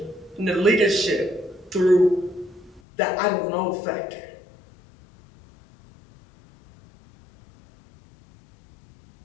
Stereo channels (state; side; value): drops out; right; at 2.8 s